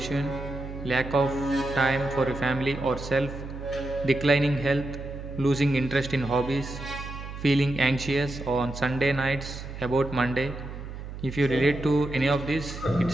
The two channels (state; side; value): noise; right; hum, 10 dB below the sound